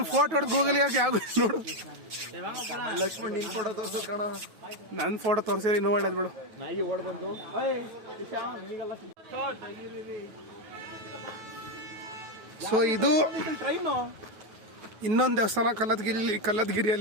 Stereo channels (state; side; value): late; left; 9.3 ms